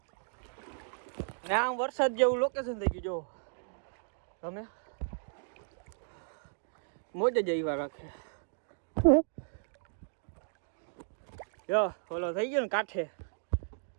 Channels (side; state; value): left; silent; digital silence